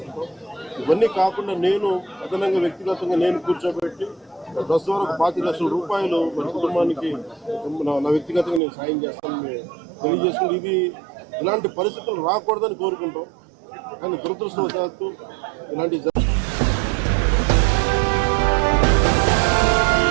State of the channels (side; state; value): left; drops out; at 8.6 s